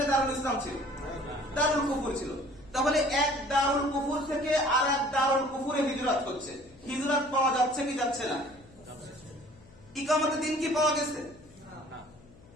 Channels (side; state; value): left; noise; hum, 24 dB below the sound